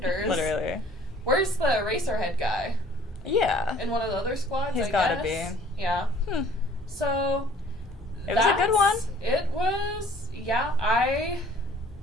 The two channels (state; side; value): normal; both; correlation 0.54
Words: Literally. Where's the Racerhead guy? Yeah. In one of the other squads, He's gotta be. Yeah. So... It was a good one. It was, yeah. I